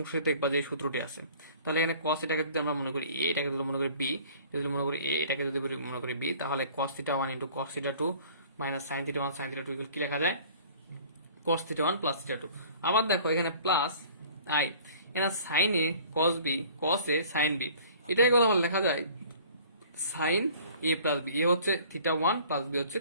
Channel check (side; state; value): both; inverted; correlation -0.50